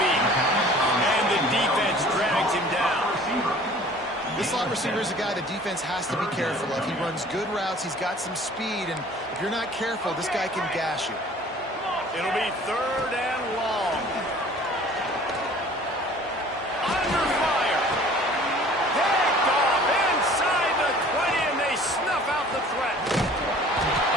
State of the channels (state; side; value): normal; both; correlation 0.49